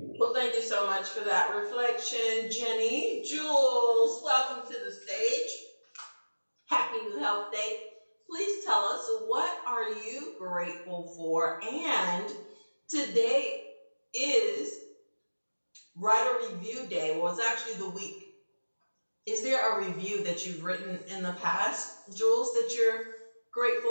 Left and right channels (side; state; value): both; inverted; correlation -1.00